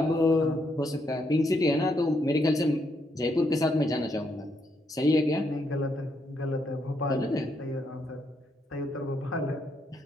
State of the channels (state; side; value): normal; both; correlation 0.77